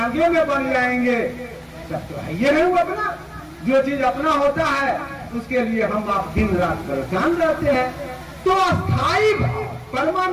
में बन जाएंगे तब तो है ये नहीं अपना। जो चीज अपना होता है उसके लिए हम आप दिन रात परेशान रहते हैं। तो अस्थाई भाव,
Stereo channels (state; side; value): identical; both; correlation 1.00